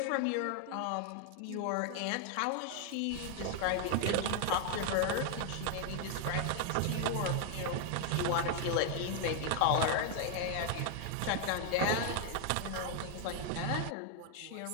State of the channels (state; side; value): different; both; correlation 0.00